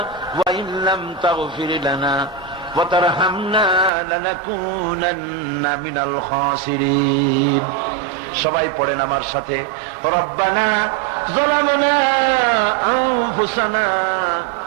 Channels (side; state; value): left; drops out; at 3.9 s